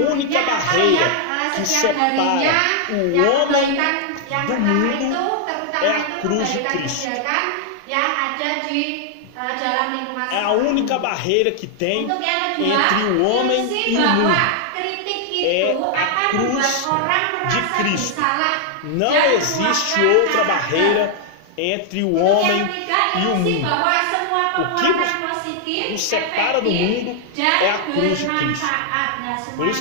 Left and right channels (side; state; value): both; different; correlation 0.00